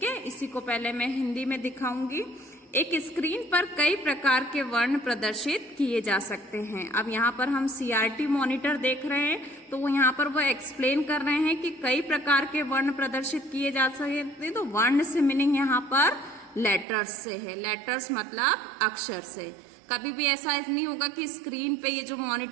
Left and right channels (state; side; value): drops out; left; at 16.9 s